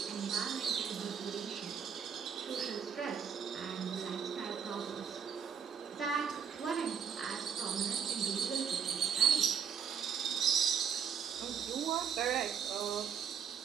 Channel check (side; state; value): left; quieter; 7.3 dB